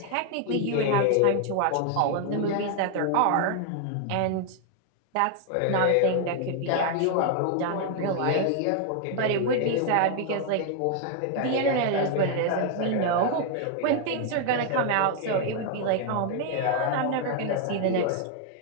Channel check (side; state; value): both; different; correlation 0.00